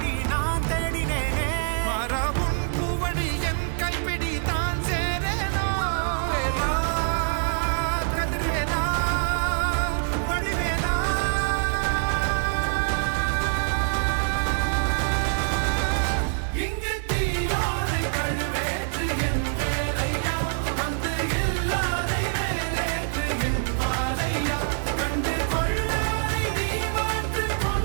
நான் தேடினேனே மாறாவும் பூவடி என் கைப்பிடி தான் சேரேனோ கதிரேனா வடிவேலா இங்கு தீயோடு கழுவேற்று என் வேலையா வந்து எல்லாரை வேலேற்று என் வாழையா கண்டு கொள்ளாரை நீ மாற்று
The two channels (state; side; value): silent; left; 62 dB below the other